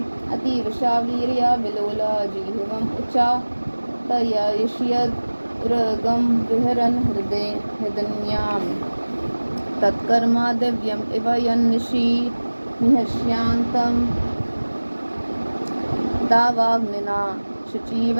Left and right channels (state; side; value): inverted; both; correlation -1.00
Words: अतीवशा वीर्या विलोला जीवम उच्चा तयष्यद उरगम विहरन हृदयाम तत्कर्मा दिव्यम इव यन्निशि निहस्यांतम दावाग्निना